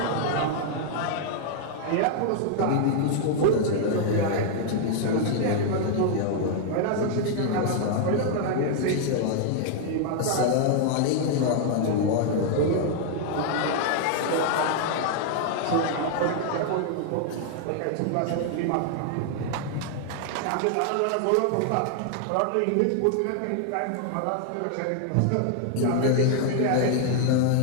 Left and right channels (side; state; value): both; different; correlation 0.00